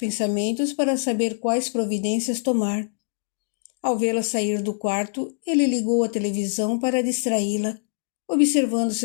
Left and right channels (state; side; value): silent; right; digital silence